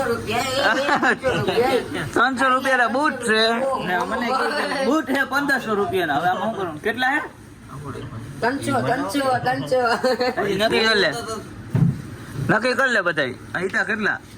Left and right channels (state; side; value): identical; both; correlation 1.00